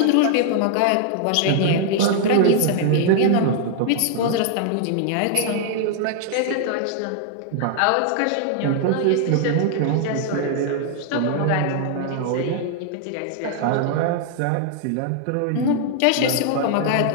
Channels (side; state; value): both; different; correlation 0.00